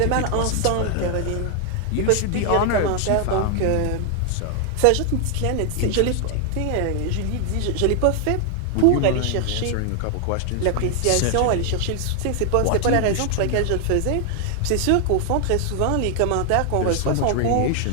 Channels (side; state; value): both; different; correlation 0.00